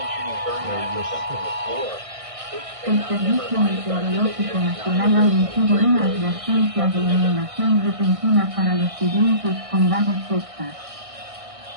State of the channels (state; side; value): late; left; 1.6 ms